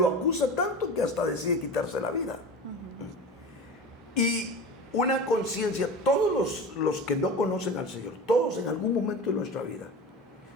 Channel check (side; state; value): both; normal; correlation 0.32